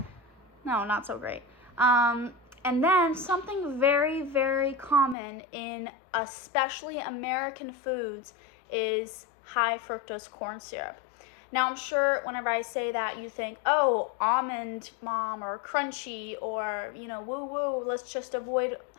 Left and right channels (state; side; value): drops out; right; at 5.2 s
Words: No, not so great. And then something very, very common in especially American foods is high fructose corn syrup. Now, I'm sure whenever I say that, you think, oh, almond mom or crunchy or, woo-woo, let's just avoid